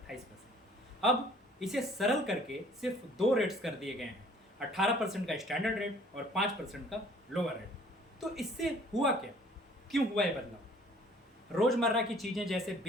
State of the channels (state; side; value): normal; both; correlation 0.55